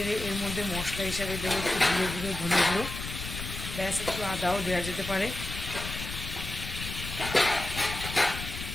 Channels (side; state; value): left; noise; rumble, 7 dB below the sound